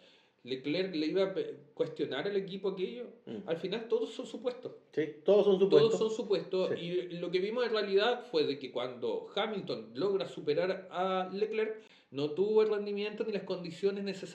¿Leclerc le iba a cuestionar al equipo aquello? Al final todos son supuestos. Sí, todos son supuestos. Todos son supuestos. Sí. Y lo que vimos en realidad fue de que cuando Hamilton logra superar a Leclerc, no tuvo el rendimiento ni las condiciones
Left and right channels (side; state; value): both; identical; correlation 1.00